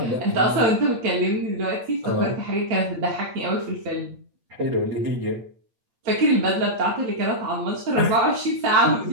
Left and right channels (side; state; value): left; late; 8.7 ms